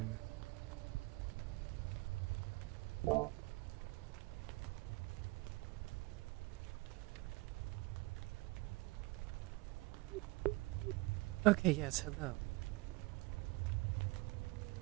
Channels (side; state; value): left; quieter; 23.1 dB